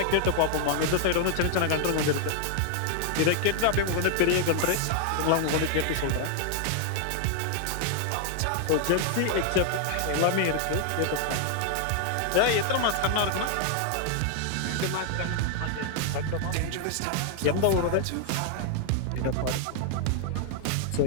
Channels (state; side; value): different; both; correlation 0.00